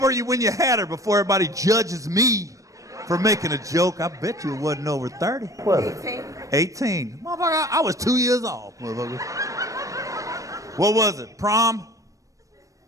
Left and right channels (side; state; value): left; late; 0.16 ms